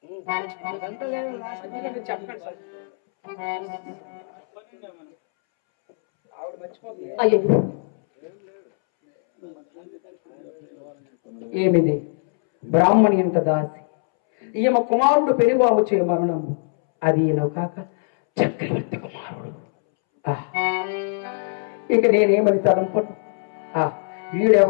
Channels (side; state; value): right; silent; 64 dB below the other